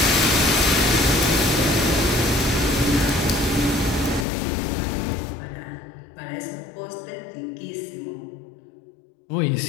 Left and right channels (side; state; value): right; drops out; at 4.2 s